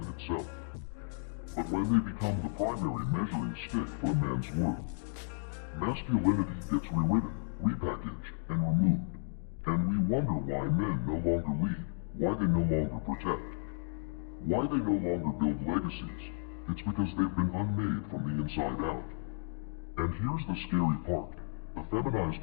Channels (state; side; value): silent; right; digital silence